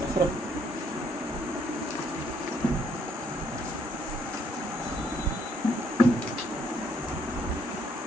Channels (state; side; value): normal; both; correlation 0.68